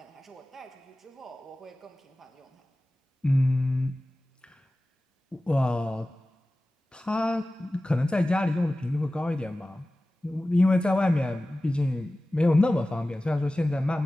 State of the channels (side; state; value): both; normal; correlation 0.97